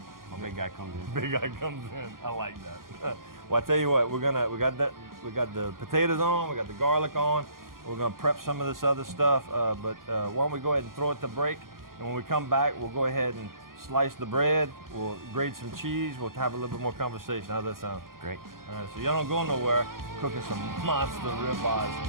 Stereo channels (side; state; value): left; late; 0.91 ms